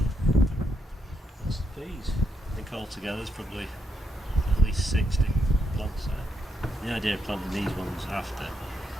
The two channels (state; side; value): normal; both; correlation 0.80